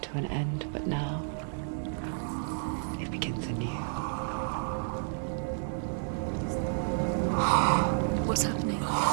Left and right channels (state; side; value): silent; left; 57 dB below the other